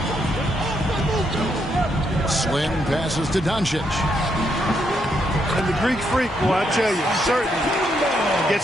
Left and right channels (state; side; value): normal; both; correlation 0.77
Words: Slim passes to Doncic. And the Greek Freak, well, I tell you, certainly